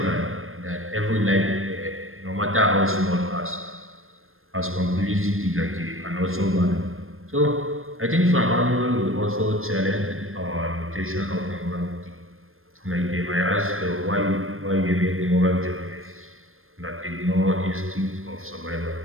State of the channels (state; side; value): late; left; 0.60 ms